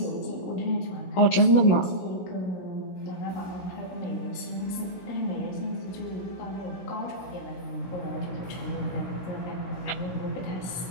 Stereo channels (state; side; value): late; right; 16 ms